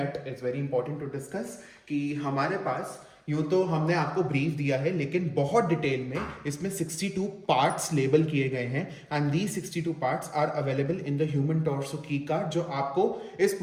is very important to discuss कि हमारे पास यूं तो हमने आपको ब्रीफ दिया है लेकिन बहुत डिटेल में इसमें 62 पार्ट्स लेबल किए गए हैं and these 62 parts are available in the human torso की कार्ड जो आपको इस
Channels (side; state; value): both; identical; correlation 1.00